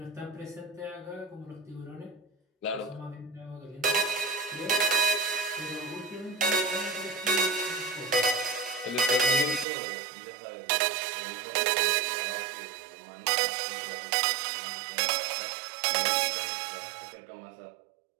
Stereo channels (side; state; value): left; drops out; at 9.7 s